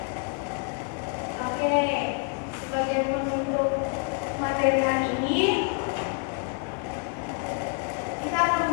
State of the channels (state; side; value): quieter; right; 38.2 dB